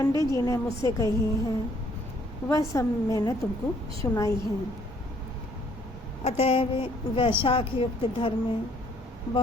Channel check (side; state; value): both; normal; correlation 0.63